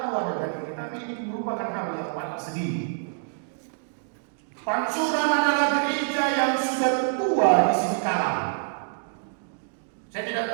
dengan ini, tapi ini merupakan hal yang paling sedih. Pansuran adalah gereja yang sudah tua di sini kalam. Saya tidak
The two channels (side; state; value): left; silent; digital silence